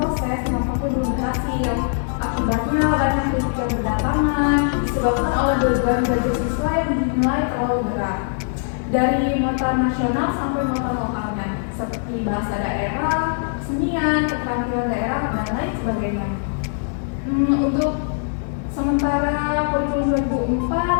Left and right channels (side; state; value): right; silent; digital silence